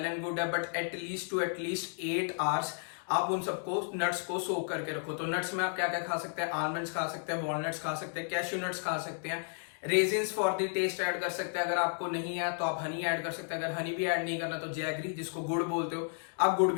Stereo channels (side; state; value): right; silent; 56 dB below the other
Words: एंड गुड है, बट एटलीस्ट 8 आवर्स आप उन सबको नट्स को सोक करके रखो। तो नट्स में आप क्या क्या खा सकते हैं, आलमंड्स खा सकते हैं, वॉलनट्स खा सकते हैं, कैश्यू नट्स खा सकते हैं, raisins for the taste add कर सकते हैं। अगर आपको नहीं है तो आप हनी ऐड कर सकते हैं। अगर हनी भी ऐड नहीं करना तो जैगरी, जिसको गुड़ बोलते हो, आप गुड़